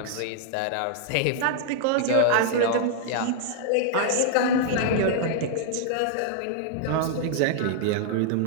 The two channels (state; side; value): different; both; correlation -0.01